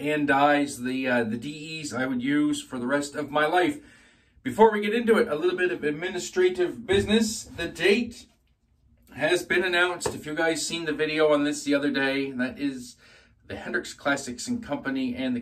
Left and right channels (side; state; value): both; identical; correlation 1.00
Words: dies, the DEs I would use for the rest of my life. Before we get into it, a little bit of administrative business. The date has been announced. If you guys seen the video on this the other day, that is the Hendrix Classics and Company and the